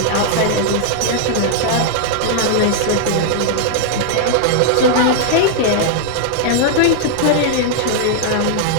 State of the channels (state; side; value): different; both; correlation -0.01